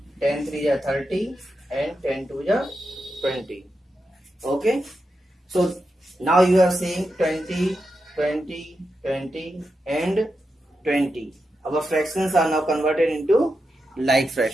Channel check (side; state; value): both; normal; correlation 0.88